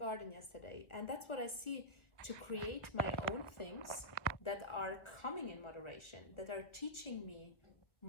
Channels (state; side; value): late; right; 1.6 ms